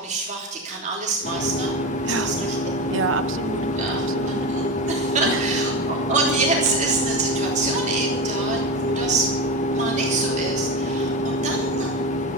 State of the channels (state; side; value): normal; both; correlation 0.21